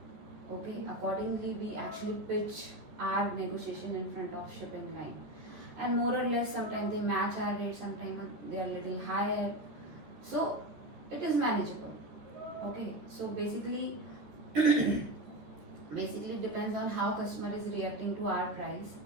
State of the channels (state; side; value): late; left; 14 ms